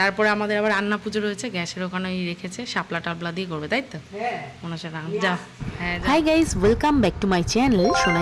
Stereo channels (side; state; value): both; identical; correlation 1.00